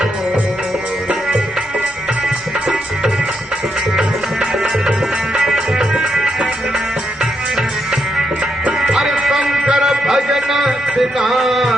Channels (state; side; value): normal; both; correlation 0.80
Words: अरे शंकर भजन बिना